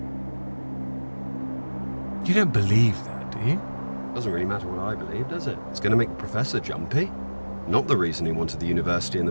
You don't believe that, do you? Doesn't really matter what I believe, does it? It's going to make the professor jumpy. Not the reason he wanted the university in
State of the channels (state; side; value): inverted; both; correlation -1.00